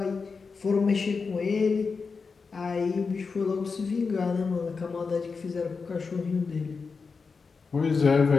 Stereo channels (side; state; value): right; quieter; 4.9 dB